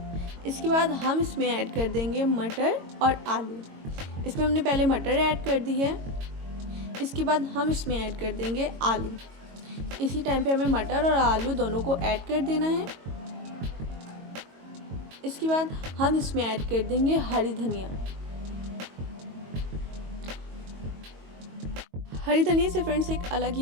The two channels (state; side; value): late; left; 22 ms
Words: इसके बाद हम इसमें ऐड कर देंगे मटर और आलू। इसमें हमने पहले मटर ऐड कर दी है। इसके बाद हम इसमें ऐड कर देंगे आलू। इसी टाइम पे हमें मटर और आलू दोनों को ऐड कर देना है। इसके बाद हम इसमें ऐड कर देंगे हरी धनिया। हरी धनिया से फ्रेंड्स एक अलग